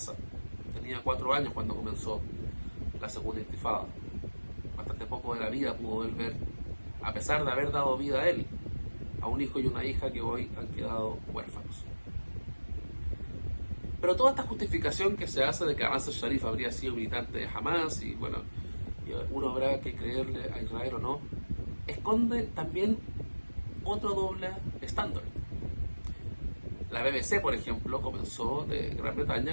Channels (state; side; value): inverted; both; correlation -1.00